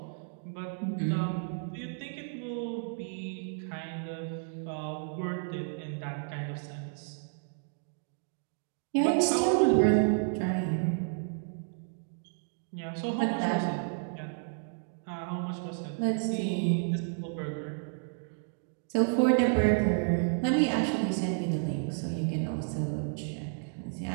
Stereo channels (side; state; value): left; silent; 57 dB below the other